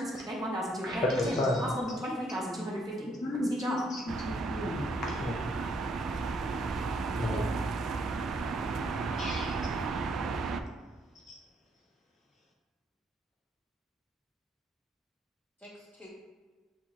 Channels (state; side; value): normal; both; correlation 0.70